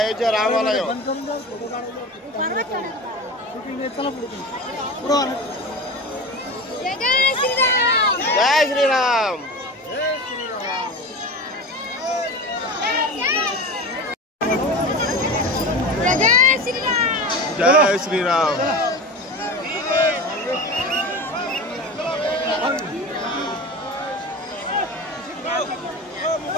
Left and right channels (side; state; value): both; normal; correlation 0.29